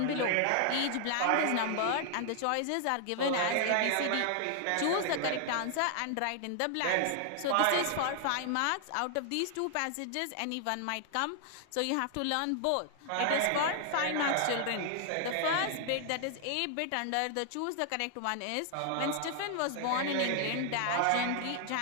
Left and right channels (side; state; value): both; different; correlation 0.00